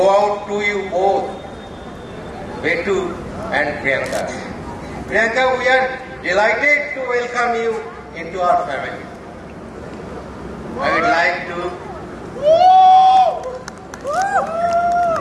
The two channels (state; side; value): identical; both; correlation 1.00